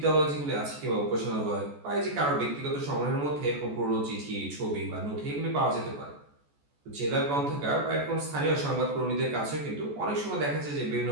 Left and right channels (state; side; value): late; left; 14 ms